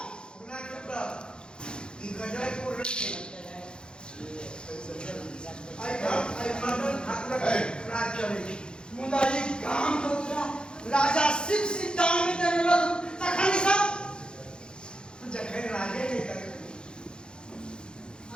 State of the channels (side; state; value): right; late; 0.050 ms